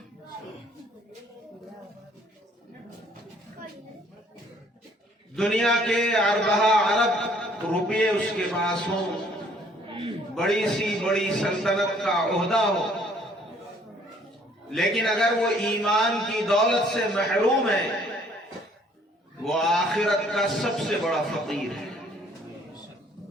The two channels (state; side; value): normal; both; correlation 0.60